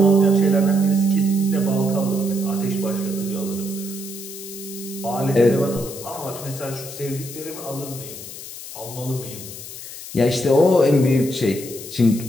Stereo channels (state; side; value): noise; left; hiss, 12 dB below the sound